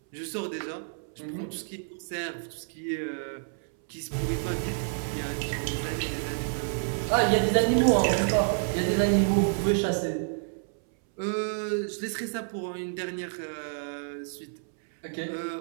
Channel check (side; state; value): left; silent; 59 dB below the other